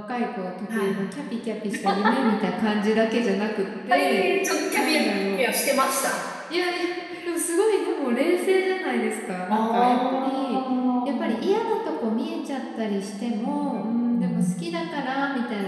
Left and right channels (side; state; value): both; identical; correlation 1.00